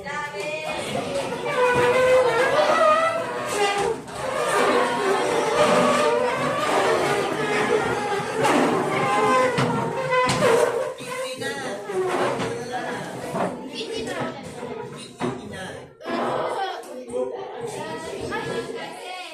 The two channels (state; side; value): identical; both; correlation 1.00